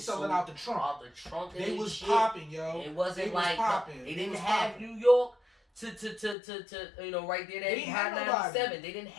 selling out the trunk. Out the trunk. They was popping, yo. It wasn't they didn't have New York to right there. They didn't have 97. They didn't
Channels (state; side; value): drops out; right; at 6.4 s